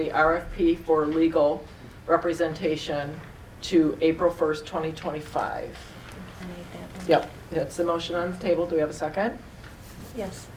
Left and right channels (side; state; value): both; identical; correlation 1.00